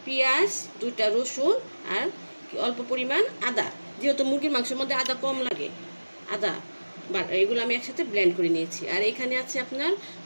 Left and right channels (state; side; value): inverted; both; correlation -1.00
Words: পেঁয়াজ, 2টা রসুন আর অল্প পরিমাণ আদা। যেহেতু মুরগির মাংসের মধ্যে আদা কম লাগে, আদা এগুলো আমি একসাথে ব্লেন্ড করে নিয়েছি। আর এখানে আছে আপনার